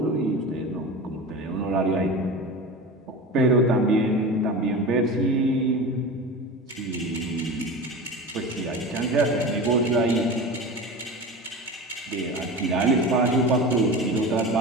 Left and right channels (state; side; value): normal; both; correlation 0.30